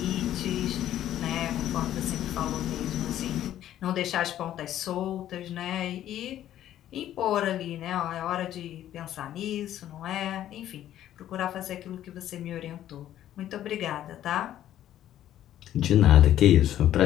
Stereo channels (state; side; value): quieter; right; 12.1 dB